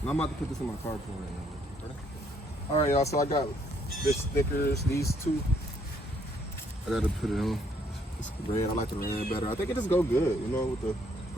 And I'm about to put this in my car right now. All right, y'all, so I got this stickers, these two. I got to put it on. It's red. I like the red better. I think it just go good, you know, with the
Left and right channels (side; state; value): both; normal; correlation 0.68